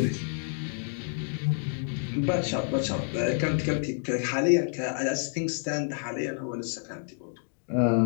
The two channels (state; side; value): silent; right; 59 dB below the other